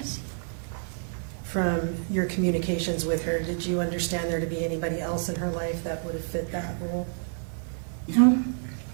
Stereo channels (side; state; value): left; silent; digital silence